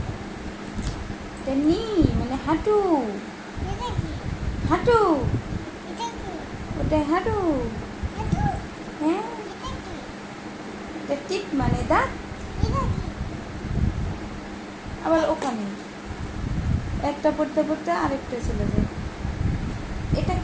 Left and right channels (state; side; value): identical; both; correlation 1.00